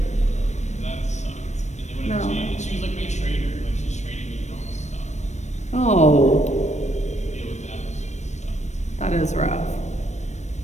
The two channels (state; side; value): late; right; 0.34 ms